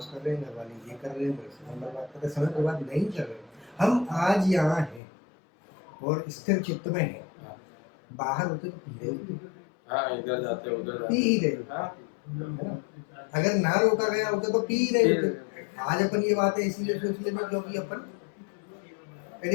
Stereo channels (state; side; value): drops out; right; at 5.0 s